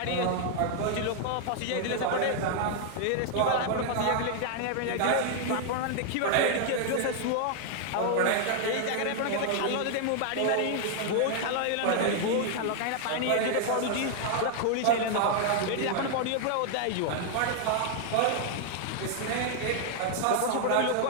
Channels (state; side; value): different; both; correlation 0.00